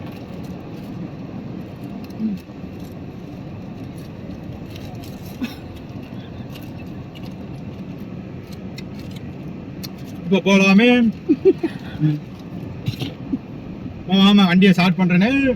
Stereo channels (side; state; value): both; identical; correlation 1.00